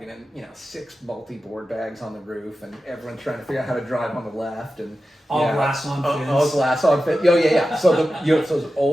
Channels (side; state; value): both; normal; correlation 0.93